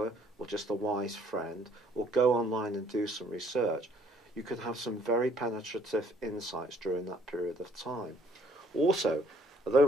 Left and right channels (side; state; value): both; normal; correlation 0.62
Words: or just a wise friend, or go online and do some research, you could have some very penetrative insights during that period of time. Also,